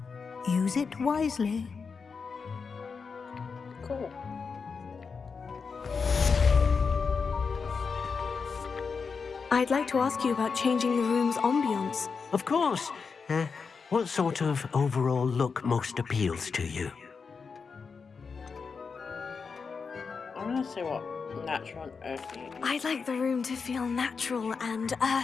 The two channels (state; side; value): quieter; right; 5.3 dB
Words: Use it wisely. Cool. I'd like to ask you about changing the room's ambience. Of course. What sort of overall look most appeals to you? I'm gonna see what natural and earthy is. I'd like the room to feel natural and